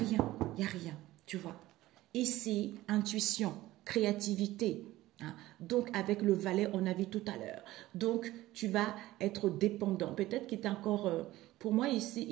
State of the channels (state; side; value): quieter; left; 16.6 dB